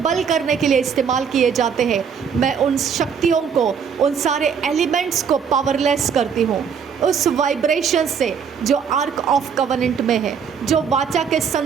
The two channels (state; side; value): quieter; left; 6.9 dB